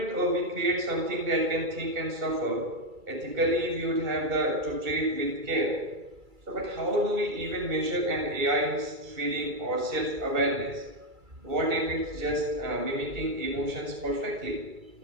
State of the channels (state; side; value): late; left; 2.3 ms